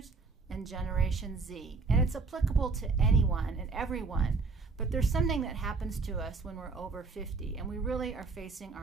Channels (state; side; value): quieter; left; 4.3 dB